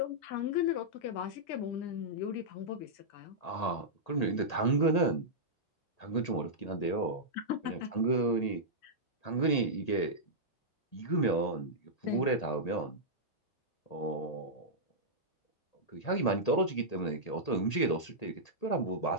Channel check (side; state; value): right; late; 1.8 ms